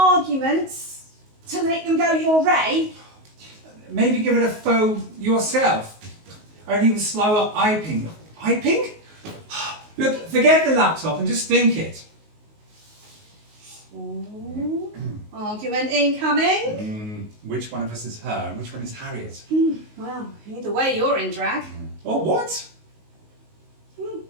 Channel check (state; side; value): late; left; 19 ms